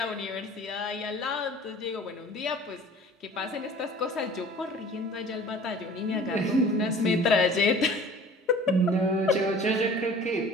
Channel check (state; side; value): normal; both; correlation 0.46